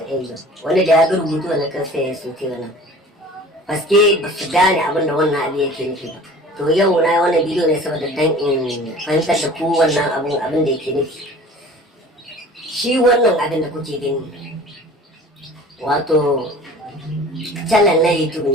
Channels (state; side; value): normal; both; correlation 0.44